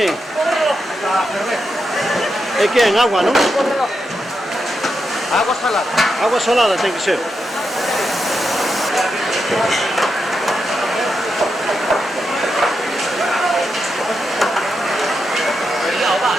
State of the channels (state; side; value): normal; both; correlation 0.86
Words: E que en agua, non? Agua salada. Agua salada ten que ser.